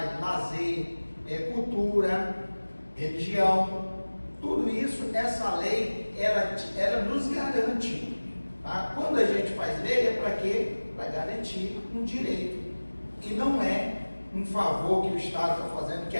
lazer, cultura, religião, tudo isso, essa lei, ela nos garante. Tá? Quando a gente faz lei, é para quê? Para garantir um direito. E não é um favor que o Estado está fazendo, que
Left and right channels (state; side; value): inverted; both; correlation -1.00